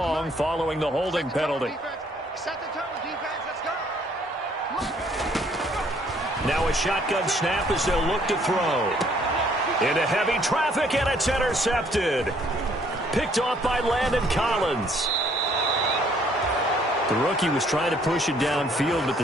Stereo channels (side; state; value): both; normal; correlation 0.63